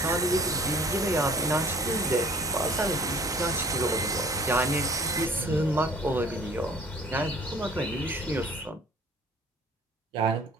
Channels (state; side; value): normal; both; correlation 0.52